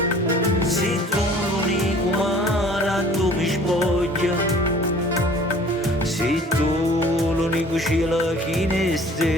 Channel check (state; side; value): normal; both; correlation 0.50